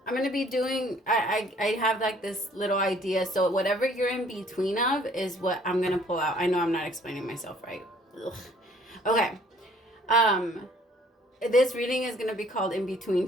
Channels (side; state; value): both; normal; correlation 0.58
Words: going to be doing, I have like this little idea. So whatever you're in between of is what I'm going to pull out. I know I'm not explaining myself right. Ugh. Okay. This reading is going to be called In Between